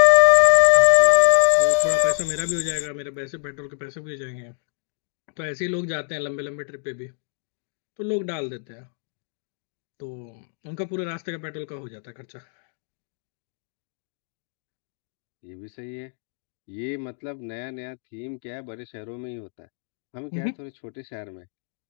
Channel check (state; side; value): silent; right; digital silence